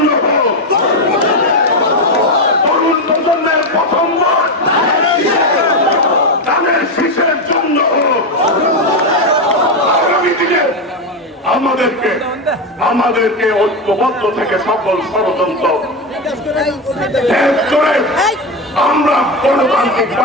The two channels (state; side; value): normal; both; correlation 0.12